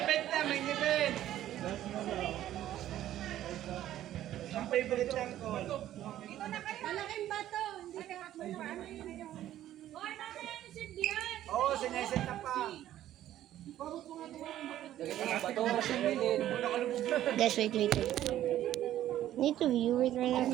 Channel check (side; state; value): left; quieter; 12.7 dB